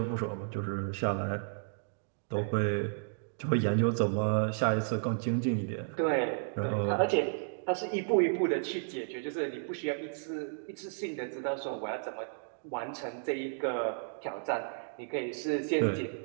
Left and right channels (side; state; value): left; silent; digital silence